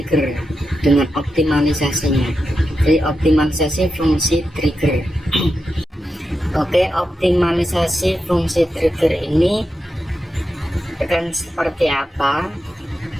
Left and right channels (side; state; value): both; normal; correlation 0.88